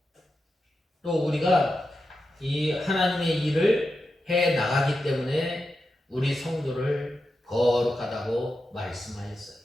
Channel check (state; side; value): normal; both; correlation 0.89